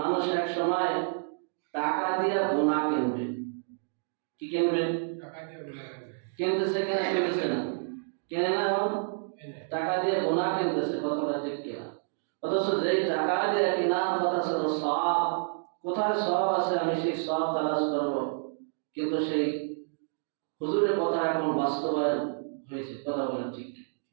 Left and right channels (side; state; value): left; silent; digital silence